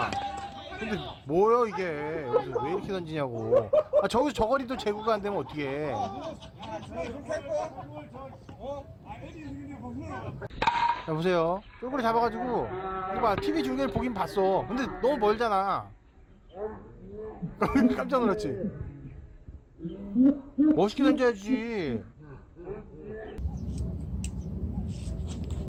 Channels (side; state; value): both; identical; correlation 1.00